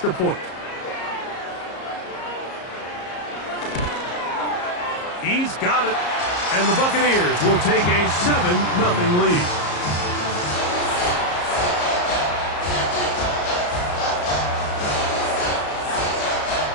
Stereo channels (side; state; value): right; late; 34 ms